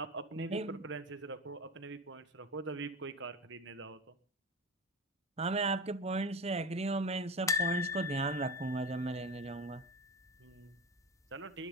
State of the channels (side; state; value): both; normal; correlation 0.26